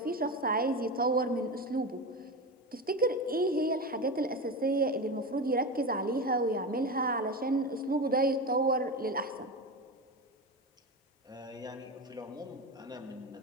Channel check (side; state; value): both; normal; correlation 0.22